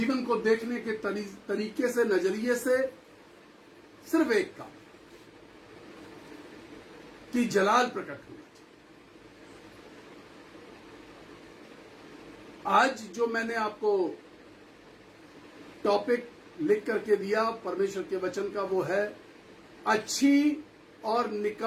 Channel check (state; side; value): identical; both; correlation 1.00